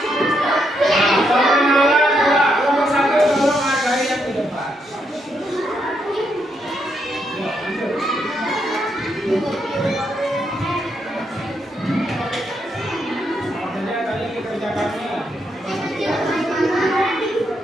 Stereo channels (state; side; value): normal; both; correlation 0.78